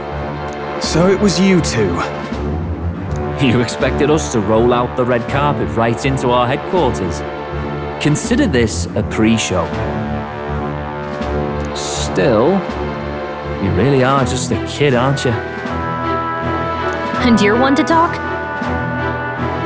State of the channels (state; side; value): identical; both; correlation 1.00